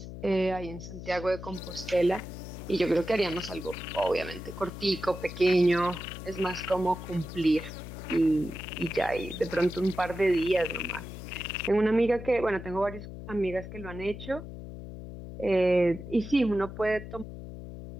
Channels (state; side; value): noise; left; hum, 11 dB below the sound